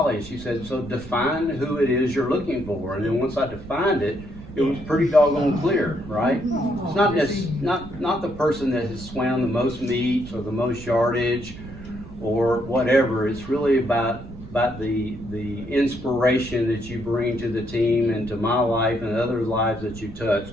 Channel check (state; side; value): noise; right; rumble, 14 dB below the sound